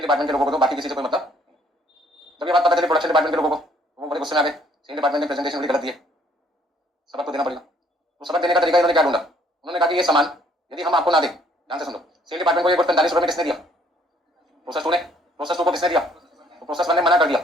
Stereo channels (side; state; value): both; normal; correlation 0.63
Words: डिपार्टमेंट के लोगों को दो, बाकी किसी से कोई मतलब। जब ये बात पता चली प्रोडक्शन डिपार्टमेंट के लोगों को, वो बड़े गुस्से में आ गए, सेल डिपार्टमेंट ने प्रेजेंटेशन बड़ी गलत दी है, सबक तो देना पड़ेगा। तो सबक देने का तरीका इन्होंने क्या ढूंढा? उन्होंने कहा कि ये सामान यदि हम आपको ना दें, ध्यान से सुनो, सेल डिपार्टमेंट को ये गुड्स 45 रुपये में किसने दिया? प्रोसेस टू ने। प्रोसेस टू को किसने दिया? तो प्रोसेस वन ने मना कर